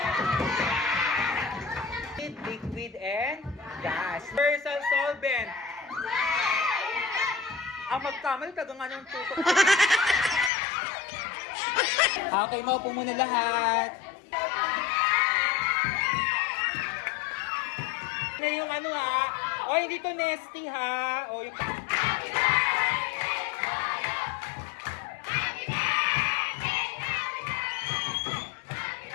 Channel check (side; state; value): right; drops out; at 10.5 s